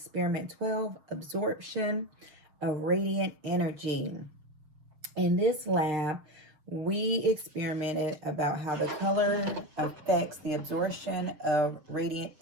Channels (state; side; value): late; left; 6.5 ms